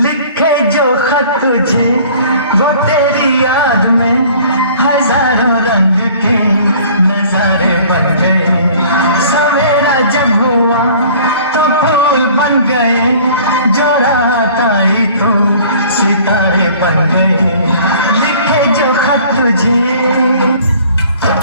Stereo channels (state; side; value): inverted; both; correlation -0.50